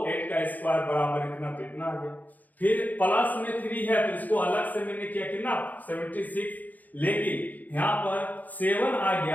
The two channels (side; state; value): right; late; 0.081 ms